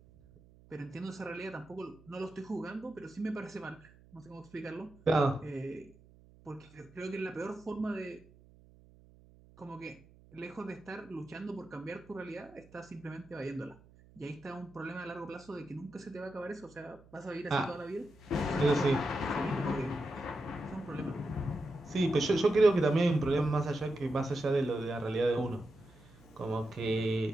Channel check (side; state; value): right; noise; hum, 25 dB below the sound